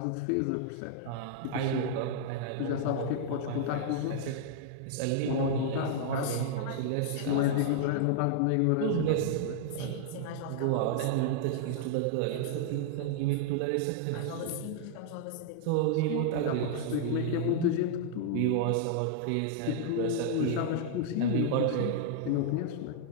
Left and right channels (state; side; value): different; both; correlation -0.01